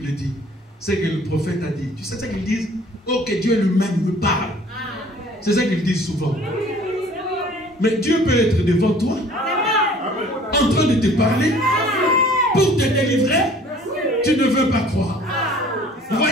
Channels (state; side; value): normal; both; correlation 0.52